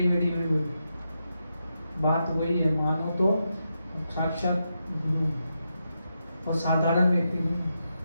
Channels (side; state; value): both; inverted; correlation -0.86